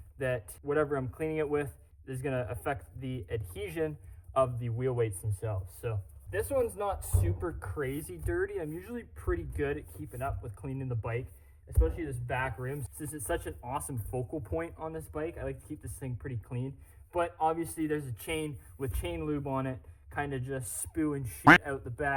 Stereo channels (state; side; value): identical; both; correlation 1.00